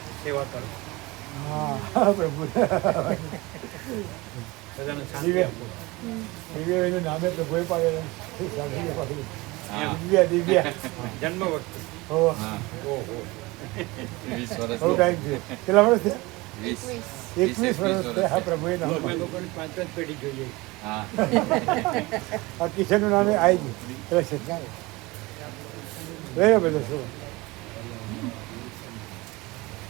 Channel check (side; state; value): left; quieter; 22.5 dB